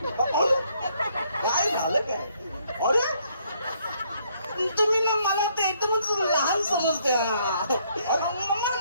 काय झालं काय? अरे तुम्ही मला ते एकदमच लहान समजते.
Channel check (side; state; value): both; inverted; correlation -0.69